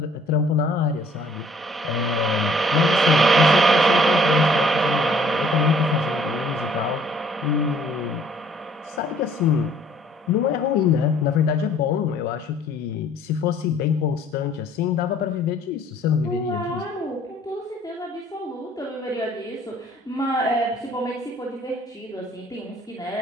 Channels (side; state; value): both; normal; correlation 0.58